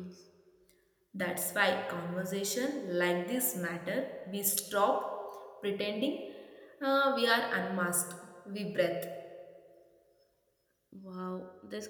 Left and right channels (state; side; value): identical; both; correlation 1.00